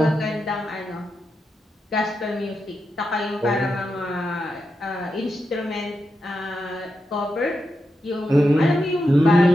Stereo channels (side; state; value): both; normal; correlation 0.87